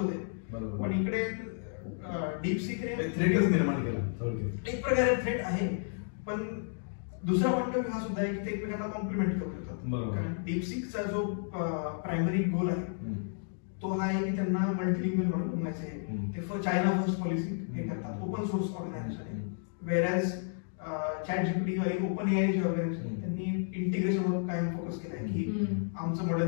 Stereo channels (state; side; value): silent; right; digital silence